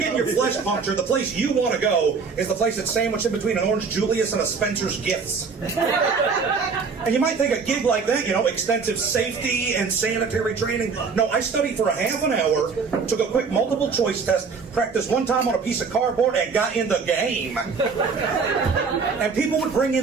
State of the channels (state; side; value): quieter; left; 5.1 dB